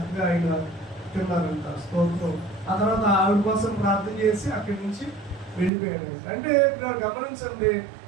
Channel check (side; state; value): left; drops out; at 5.7 s